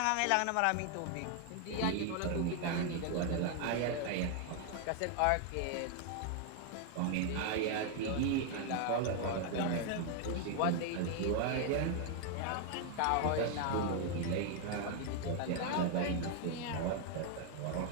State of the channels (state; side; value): different; both; correlation 0.00